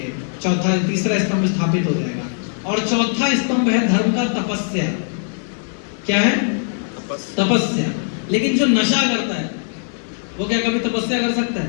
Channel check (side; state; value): right; silent; digital silence